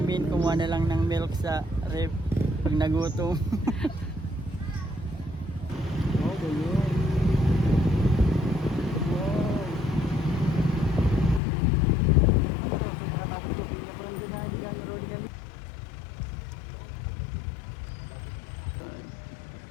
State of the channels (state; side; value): drops out; right; at 11.4 s